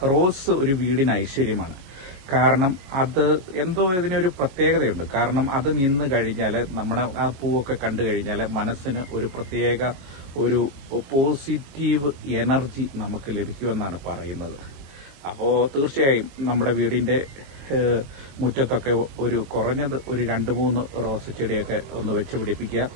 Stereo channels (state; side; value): late; left; 22 ms